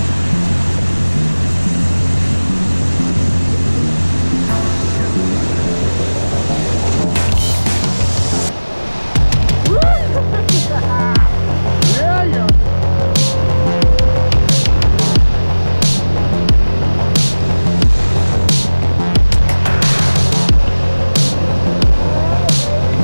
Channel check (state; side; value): inverted; both; correlation -1.00